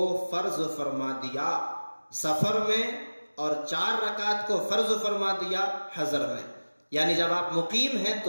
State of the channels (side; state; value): both; inverted; correlation -1.00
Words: فرض فرما دیا سفر میں اور 4 رکعات کو فرض فرما دیا حضر میں. یعنی جب آپ مقیم ہیں